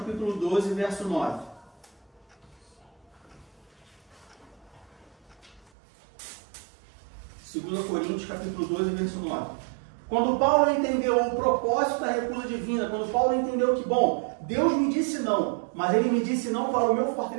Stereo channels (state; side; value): drops out; left; at 5.7 s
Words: 12, verso 9. Segundo Coríntios, capítulo 12, verso 9. Quando Paulo entendeu o propósito da recusa divina, quando Paulo entendeu que, bom, Deus me disse não, mas Ele me disse não para o meu